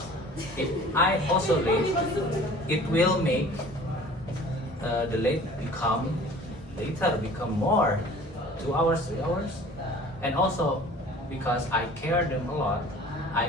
If I also late, it will make the late become later become more 2 hours, 3 hours, and also because I care them a lot, I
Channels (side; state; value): both; normal; correlation 0.46